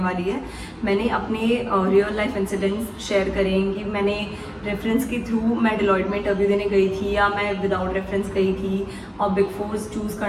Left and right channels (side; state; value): both; identical; correlation 1.00